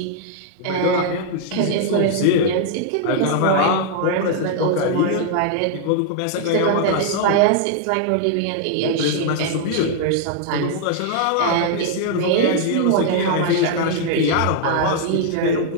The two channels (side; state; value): both; different; correlation 0.00